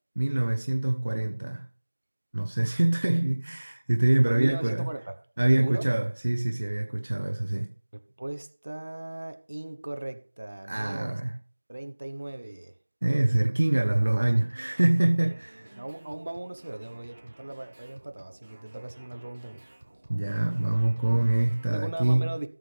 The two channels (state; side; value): inverted; both; correlation -1.00